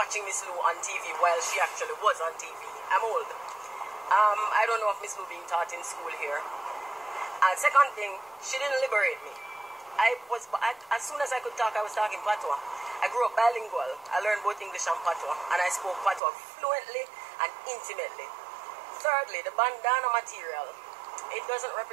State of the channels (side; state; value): left; drops out; at 16.2 s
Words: Miss Lou on TV while she actually was on TV. I'm old. I don't know if Miss Lou being taught in school here. And second thing, she didn't liberate me. As soon as I could talk, I was talking Patois. I grew up bilingual. I learned both English and Patois, and I spoke Patois fluently and intimately. Thirdly, the bandana material, it doesn't